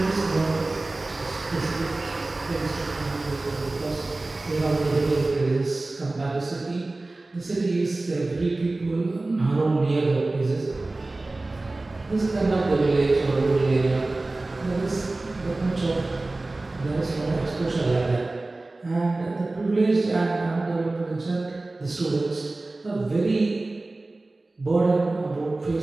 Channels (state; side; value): quieter; left; 3.0 dB